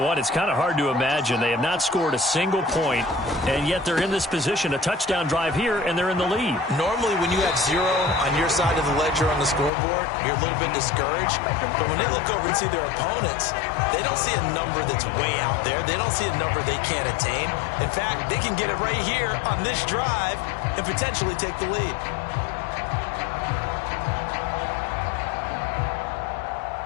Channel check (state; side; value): drops out; right; at 9.7 s